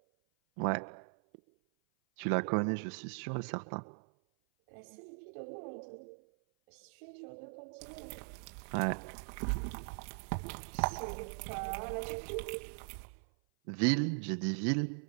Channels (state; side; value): silent; left; 52 dB below the other